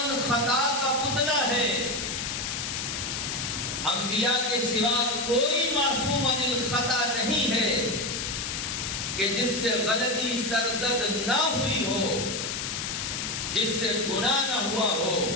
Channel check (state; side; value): noise; left; hiss, 3 dB below the sound